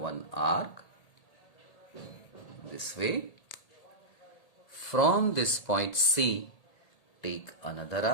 arc this way. From this point C, take another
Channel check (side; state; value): right; late; 1.8 ms